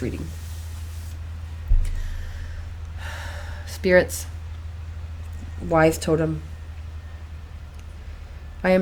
reading. Spirits, wise totem, I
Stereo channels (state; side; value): identical; both; correlation 1.00